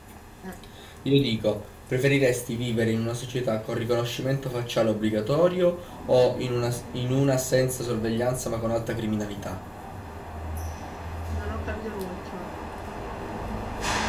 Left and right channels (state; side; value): identical; both; correlation 1.00